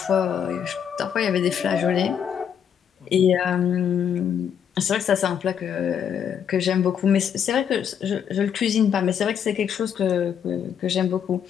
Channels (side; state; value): right; quieter; 8.3 dB